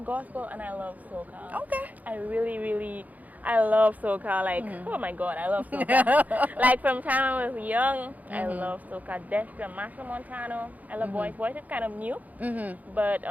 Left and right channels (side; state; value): left; late; 0.079 ms